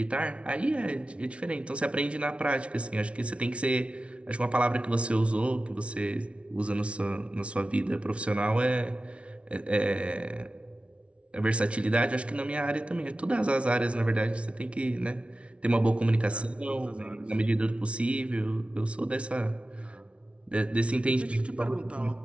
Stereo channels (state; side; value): late; left; 0.061 ms